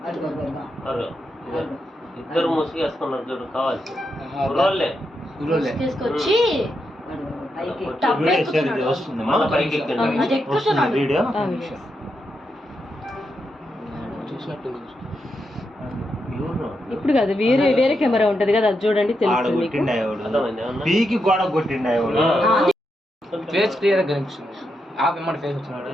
ఇద్దరు ముసుగేసుకున్నారు చూడు, కావాలి తీసుకొచ్చి ఇప్పుడు కాదు, వేరే వేరే కెమెరా ఉంటది కదా, అది చూడండి తెలుస్తుంది. ఫేస్ క్లియర్ గా కనిపిస్తుంది. ఫేస్ వచ్చినాడు,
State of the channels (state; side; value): normal; both; correlation 0.84